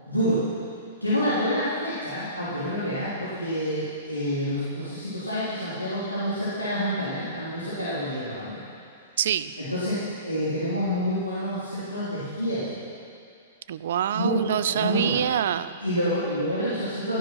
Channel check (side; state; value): both; inverted; correlation -0.44